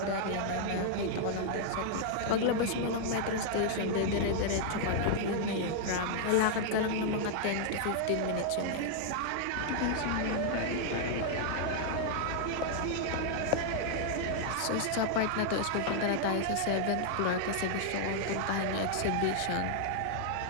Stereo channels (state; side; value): different; both; correlation -0.01